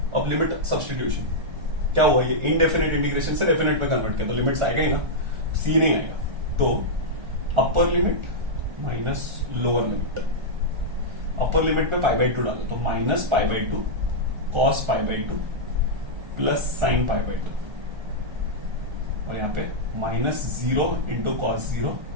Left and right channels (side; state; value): left; late; 1.3 ms